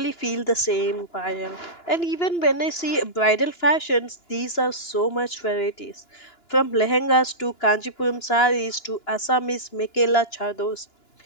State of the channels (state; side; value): late; right; 2.9 ms